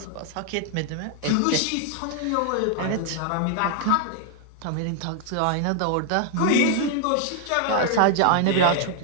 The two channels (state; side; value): different; both; correlation 0.00